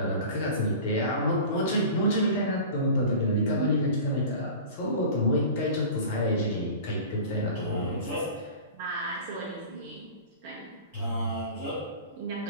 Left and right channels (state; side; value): inverted; both; correlation -0.38